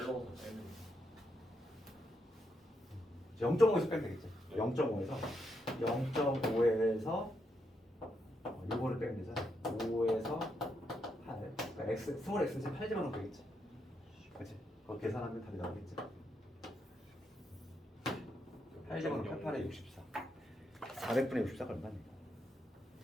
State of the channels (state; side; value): normal; both; correlation 0.80